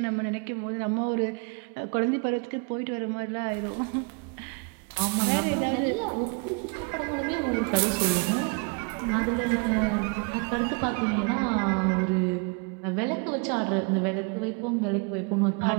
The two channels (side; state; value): left; quieter; 33.4 dB